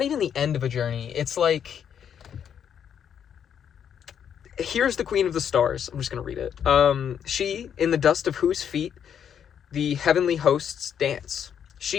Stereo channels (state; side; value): quieter; right; 8.5 dB